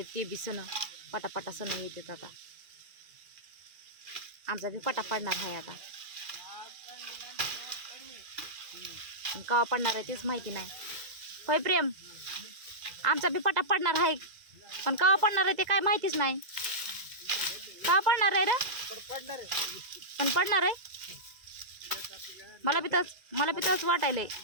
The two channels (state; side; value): late; left; 2.0 ms